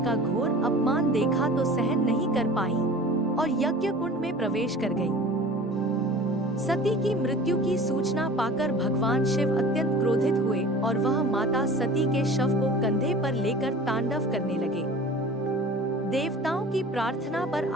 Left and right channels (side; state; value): both; normal; correlation 0.41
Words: का घोर अपमान देखा तो सहन नहीं कर पाई और यज्ञ कुंड में प्रवेश कर गई। सती की मृत्यु की सूचना पाकर भगवान शिव अत्यंत क्रोधित हुए और वह माता सती के शव को कंधे पर लेकर तांडव करने लगे। देवताओं की प्रार्थना पर